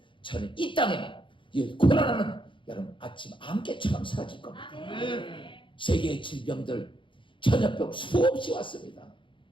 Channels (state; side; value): late; right; 0.24 ms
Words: 저는 이 땅에 이 고난하는 여러분 아침 안개처럼 사라질 겁니다. 아멘. 세계의 질병들, 전염병 수없이 왔습니다.